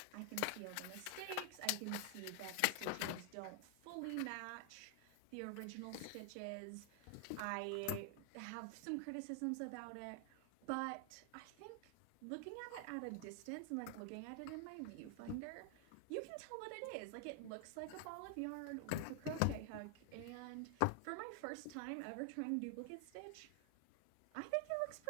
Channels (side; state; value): both; different; correlation 0.00